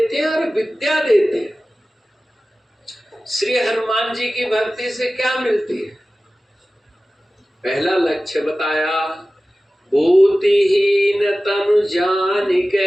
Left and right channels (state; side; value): normal; both; correlation 0.96